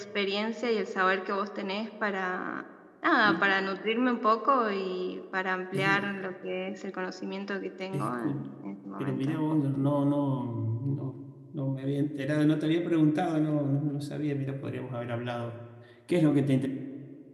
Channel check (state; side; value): identical; both; correlation 1.00